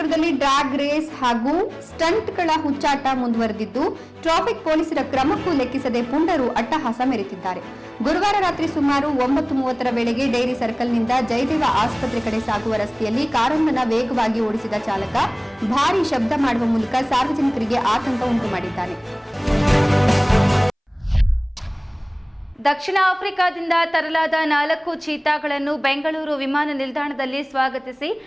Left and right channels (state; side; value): identical; both; correlation 1.00